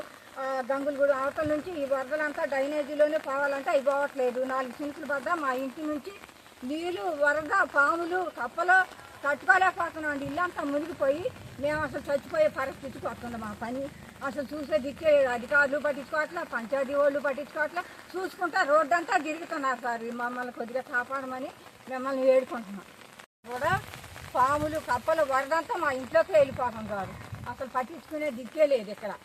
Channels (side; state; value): both; identical; correlation 1.00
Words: గంగులగూడ అవతల నుంచి ఈ వరదలంతా డ్రైనేజీలోనే పోవాలంటే అవి పోవట్లేదు. 4 సెంట్లు వద్ద మా ఇంటి నుంచి నీళ్ళు వరద పాములు కప్పలు తట్టుకోలేకపోతున్నాం అండి. ఇల్లంతా మునిగిపోయి మేము అసలు చచ్చిపోయే పరిస్థితికి వస్తుంది. మా పని అసలు చూసే దిక్కే అధికారులు పట్టించుకోవట్లా, పంచాయతీ వాళ్ళు పట్టించుకోవట్లా, చూసుకుంటా రోడ్డు అంతా తిరుగుతున్నారు సార్. మమ్మల్ని కొద్దిగా కాపాడమని మిమ్మల్ని వేడుకుంటున్నాం. కూడా పాములు కప్పలు వరదంతా మా ఇంట్లోకి వెళ్ళిపోతాం సార్. అసలు పట్టించుకునే దిక్కే లేదు ఇక్కడ.